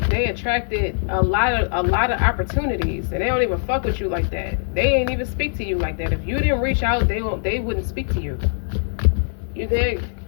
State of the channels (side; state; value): right; silent; 57 dB below the other